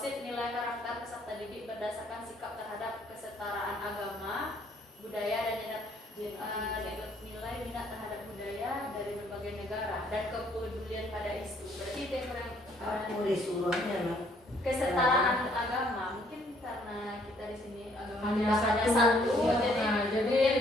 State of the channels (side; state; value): both; normal; correlation 0.65